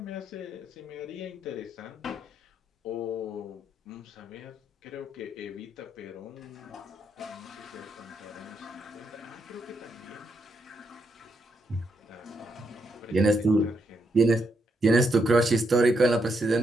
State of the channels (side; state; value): both; normal; correlation 0.79